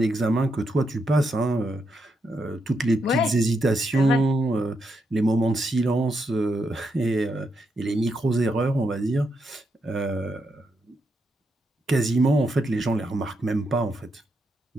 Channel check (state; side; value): normal; both; correlation 0.82